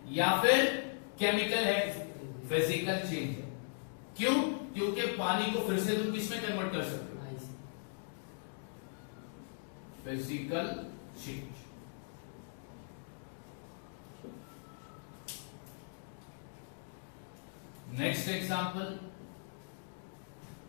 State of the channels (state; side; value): silent; right; digital silence